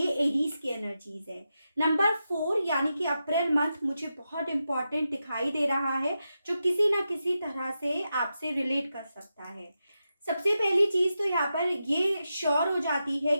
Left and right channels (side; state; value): both; inverted; correlation -0.89